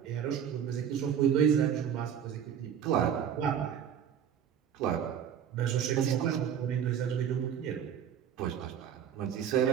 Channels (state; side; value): quieter; left; 8.8 dB